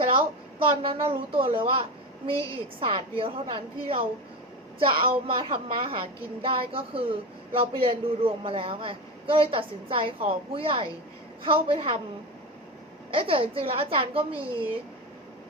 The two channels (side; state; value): both; normal; correlation 0.22